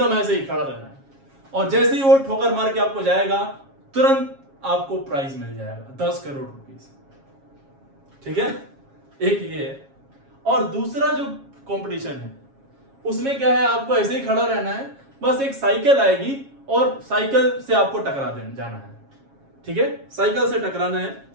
ऐसे ही खड़ा रहना है। और जैसे ही वो ठोकर मार के आपको जाएगा तुरंत आपको प्राइज मिल जाएगा 10 करोड़ रुपीस, ठीक है। एक ये है। और दूसरा जो कंपटीशन है उसमें क्या है, आपको ऐसे ही खड़ा रहना है, बस एक साइकिल आएगी और साइकिल से आपको टकरा देना जाना है, ठीक है, साइकिल से टकराना है,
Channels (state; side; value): late; left; 7.3 ms